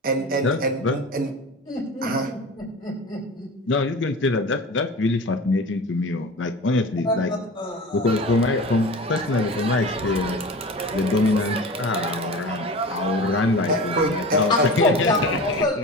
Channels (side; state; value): both; normal; correlation 0.34